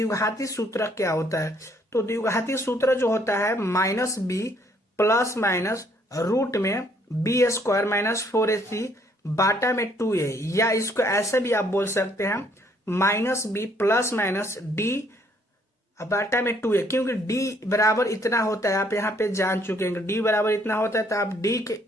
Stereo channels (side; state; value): both; normal; correlation 0.65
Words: सूत्र क्या होता है। तो द्विघाती सूत्र जो होता है minus B plus minus root में बी स्क्वायर माइनस 4ac बाटा में 2a, या इसको ऐसे भी आप बोल सकते हैं minus B plus minus d बाटा में 2a, क्योंकि d बराबर इतना होता है, आप यहाँ पे जान चुके हैं d बराबर इतना होता है, तो आप d के